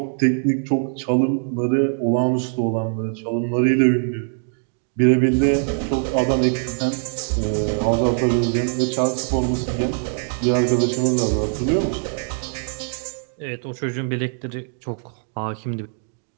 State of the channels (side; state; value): left; silent; digital silence